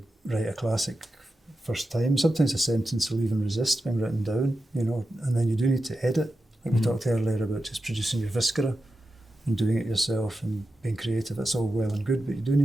write a classic first time. Sometimes a sentence will even resist being written down, and then you do need to edit. Like we talked earlier about just producing your viscera and doing it yourself and being creative. That's all well and good, but you do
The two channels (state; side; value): normal; both; correlation 0.91